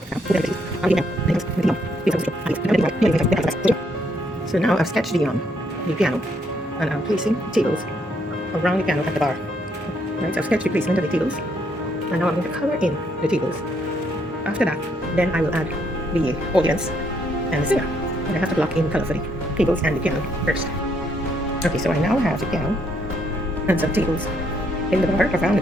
now I've sketched the piano, and I'm placing tables around the piano at the bar. Right, so I've sketched the placement of the tables, and now I'm going to color in the tables. After that, then I will add the audience and the singer. And I have to block in color for the tables and the piano first. Okay, so I now have the piano and some tables in the bar around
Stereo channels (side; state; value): both; normal; correlation 0.72